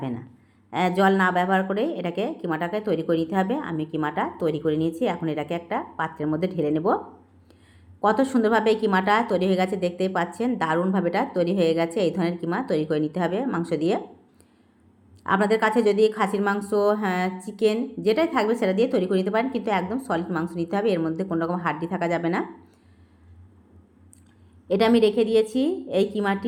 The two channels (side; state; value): both; identical; correlation 1.00